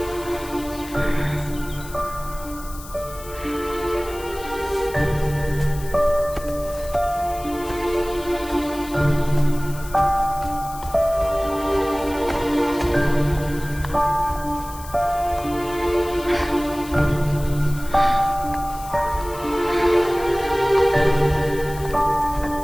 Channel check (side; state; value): left; noise; hiss, 16 dB below the sound